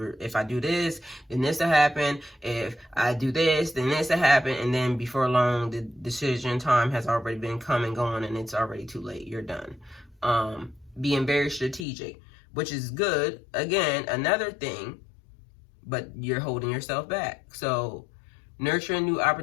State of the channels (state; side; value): drops out; right; at 11.9 s